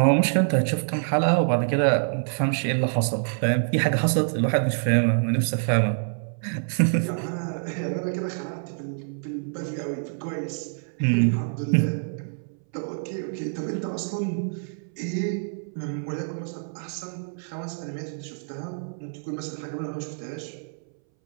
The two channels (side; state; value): left; silent; 61 dB below the other